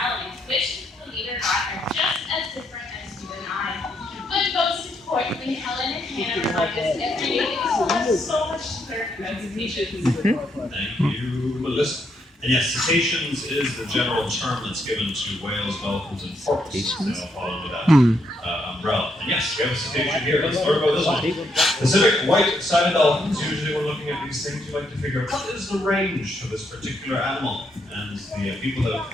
which, believe it or not, are just as different as you and I. But most importantly, Helen and Hannah remind us every day that we still have so much to learn about cetaceans. Thank you, Melissa. And yes, cetaceans is the general term that's given to whales, dolphins, and porpoises. They all fall under that umbrella. And yes, we have a cetacean here. Let's learn about this one. Pacific white-sided dolphins. Usually when looking at these things, you like to figure out what is the range for this particular animal. And the people that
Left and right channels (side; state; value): both; normal; correlation 0.76